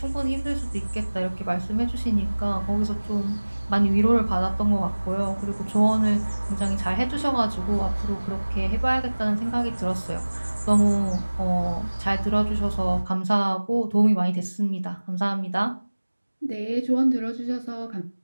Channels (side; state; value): both; inverted; correlation -1.00